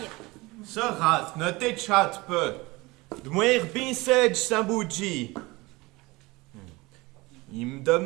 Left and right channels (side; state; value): left; quieter; 22.6 dB